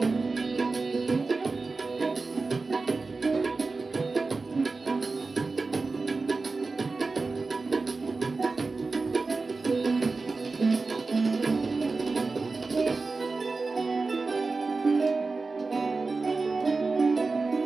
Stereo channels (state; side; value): quieter; left; 3.9 dB